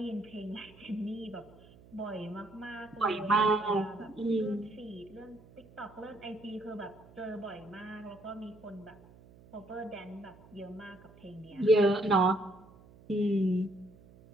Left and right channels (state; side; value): noise; right; hum, 23 dB below the sound